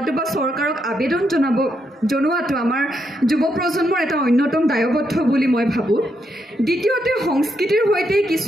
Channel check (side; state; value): both; normal; correlation 0.80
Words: বা চৰকাৰক আবেদন জনোৱাটো আমাৰ যুৱ প্ৰজন্মৰ এটা অন্যতম দায়বদ্ধ বুলি মই ভাবোঁ। দ্বিতীয়তে সংস্কৃতিৰ সৈতে